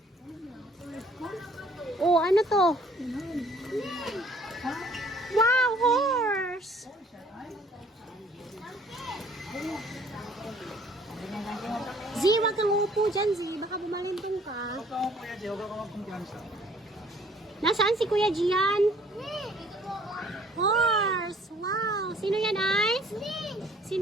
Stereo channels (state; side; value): normal; both; correlation 0.58